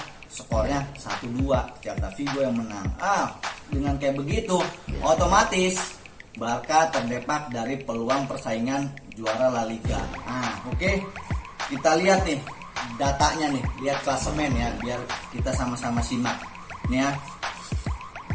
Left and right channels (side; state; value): both; identical; correlation 1.00